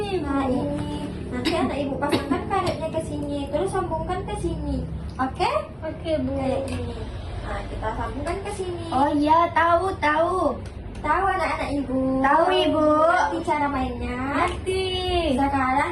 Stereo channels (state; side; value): identical; both; correlation 1.00